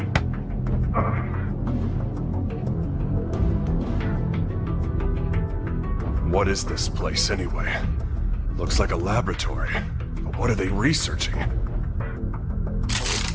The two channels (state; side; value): identical; both; correlation 1.00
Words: What is this place, anyway? Looks like a laboratory. But what are they researching?